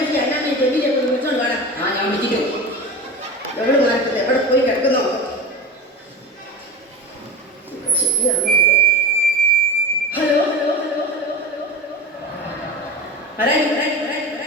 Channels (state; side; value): normal; both; correlation 0.29